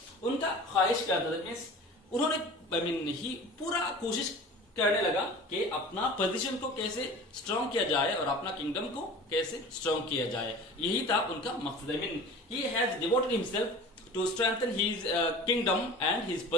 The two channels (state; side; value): normal; both; correlation 0.39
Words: उनका ख्वाहिश क्या था? मीन्स उन्होंने he पूरा कोशिश करने लगा कि अपना पोजीशन को कैसे स्ट्रॉन्ग किया जाए और अपना किंगडम को कैसे स्ट्रॉन्ग किया जाए. यही था उनका मकसद. He has devoted himself to strengthen his kingdom and his